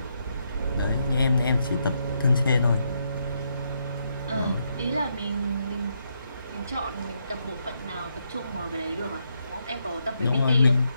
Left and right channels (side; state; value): both; inverted; correlation -0.79